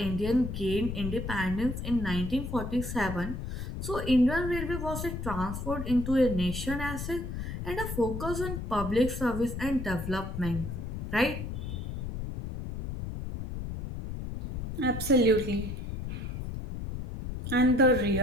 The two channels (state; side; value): noise; left; rumble, 6 dB below the sound